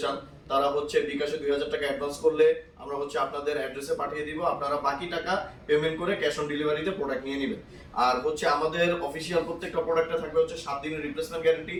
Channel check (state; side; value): identical; both; correlation 1.00